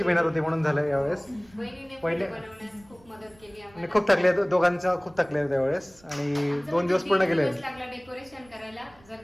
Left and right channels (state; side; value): noise; right; rumble, 27 dB below the sound